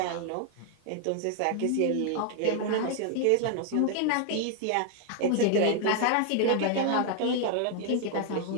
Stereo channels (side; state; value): both; different; correlation 0.00